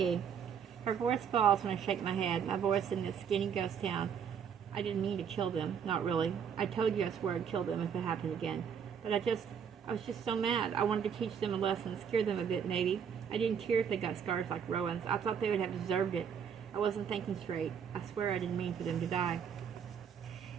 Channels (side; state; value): left; quieter; 7.6 dB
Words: Her voice falls when I shake my head. My voice in this skinny ghost town. I didn't mean to kill them. Not really. I told you I swore I'd kill them if it happened again. But I was just so mad. I wanted to teach them a lesson, scare them a bit, maybe. I didn't care if they got scars like Rowan's. I thought they would have deserved it. I wasn't thinking straight. I swear I didn't mean for them to die.